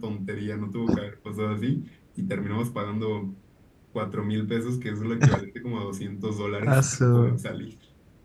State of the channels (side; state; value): both; identical; correlation 1.00